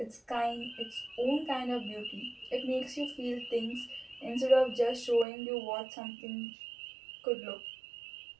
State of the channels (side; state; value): left; drops out; at 5.2 s